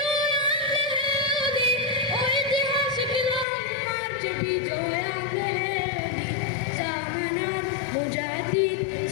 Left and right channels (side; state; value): right; drops out; at 3.5 s